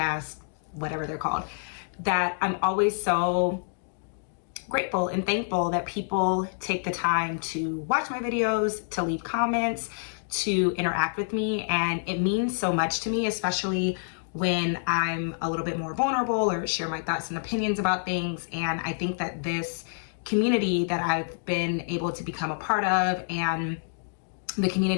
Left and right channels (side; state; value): right; silent; digital silence